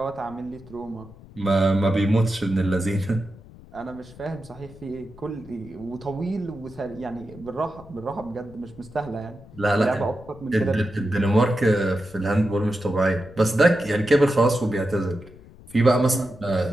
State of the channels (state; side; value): noise; left; rumble, 20 dB below the sound